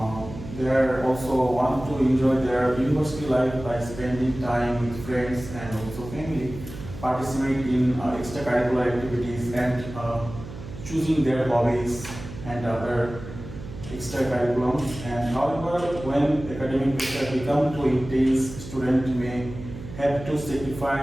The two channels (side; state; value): right; noise; hum, 12 dB below the sound